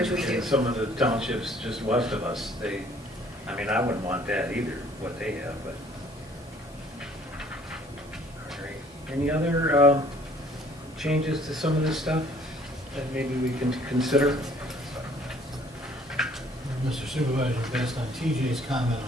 we in do. some of the townships just west of us. They, I mean, I wouldn't want that either, what they have, but. All right. Any other changes to some of this stuff that maybe we can consider? Mr. Supervisor, based on TJ's comment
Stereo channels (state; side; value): normal; both; correlation 0.58